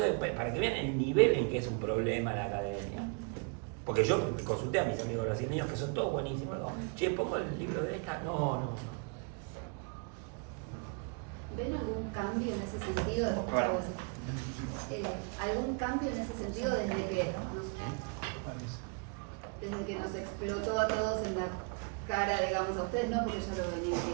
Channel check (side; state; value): left; quieter; 36.3 dB